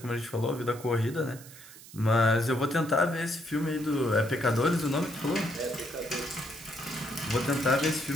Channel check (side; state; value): right; noise; hiss, 18 dB below the sound